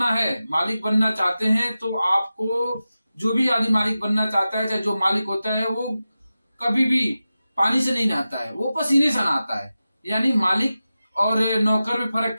चाहते हैं तो आपको जो भी आदमी मालिक बनना चाहता है, चाहे जो मालिक होता है, वो कभी भी पानी से नहीं नहाता है, वो पसीने से नहाता है। यानी मालिक और नौकर में फर्क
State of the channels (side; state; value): both; inverted; correlation -0.94